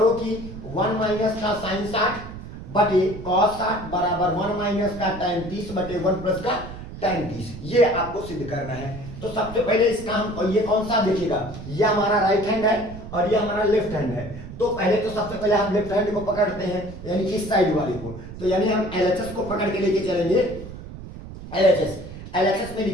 कि 1 माइनस का साइन 60 बटे cos 60 बराबर 1 माइनस का tan 30 बटे 1 प्लस का tan 30। ये आपको सिद्ध करना है। तो सबसे पहले इसका हम ये कौन सा देखिएगा, ये हमारा राइट हैंड है और ये हमारा लेफ्ट हैंड है। तो पहले तो सबसे पहले हम लेफ्ट हैंड को पकड़ते हैं यानी इस साइड वाले को। तो यानी हम LHS को पकड़ के लेके चलेंगे। LHS में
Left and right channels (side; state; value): right; noise; rumble, 12 dB below the sound